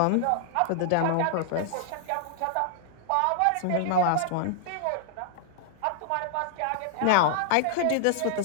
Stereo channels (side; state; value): both; different; correlation -0.01